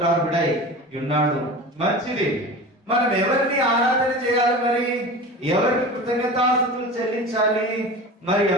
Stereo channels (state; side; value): normal; both; correlation 0.33